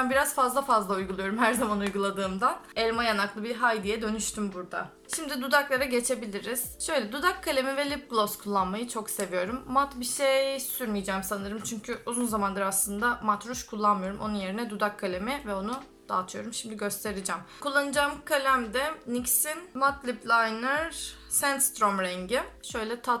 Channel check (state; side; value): identical; both; correlation 1.00